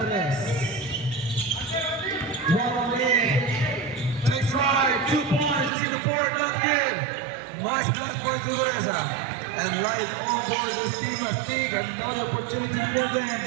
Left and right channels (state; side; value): drops out; left; at 5.7 s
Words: 1 in. Takes right, 2 points, you see the board, not good. Nice pass for Teresa. And right on board this team of Stig. Another opportunity for them,